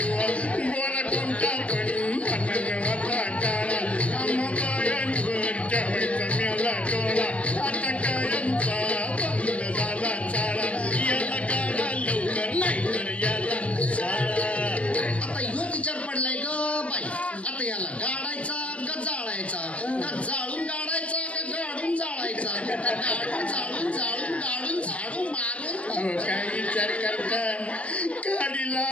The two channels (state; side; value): late; right; 0.063 ms